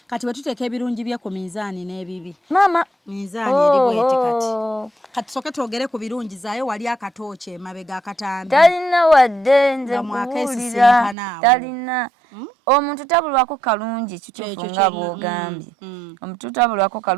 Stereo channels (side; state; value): left; drops out; at 11.2 s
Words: kati bwe tuteeka ebirungi bye ku minzaani n'ebibi mama minzaani eri bweti kati soke twogere ku birungi zaayo wali akatooki emabega akatambi talina wadde nze nkubuulira talina omuntu tabulwako kalungi kituufu nga bw'ogambye omuntu tabulwako